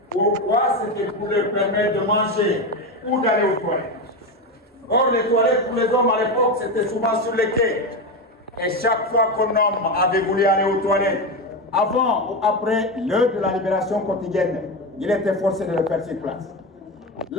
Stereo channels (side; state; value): both; normal; correlation 0.16